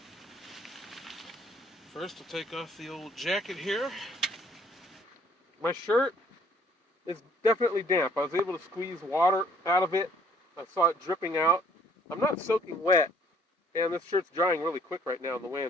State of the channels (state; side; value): normal; both; correlation 0.60